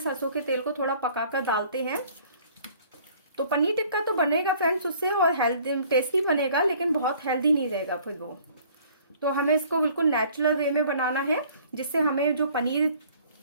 के तेल को थोड़ा पकाकर डालते हैं। तो पनीर टिक्का तो बनेगा फ्रेंड्स उससे और हेल्दी टेस्टी बनेगा, लेकिन बहुत हेल्दी नहीं रहेगा फिर वो। तो हमें इसको बिल्कुल नेचुरल वे में बनाना है, जिससे हमें जो पनीर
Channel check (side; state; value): both; inverted; correlation -0.55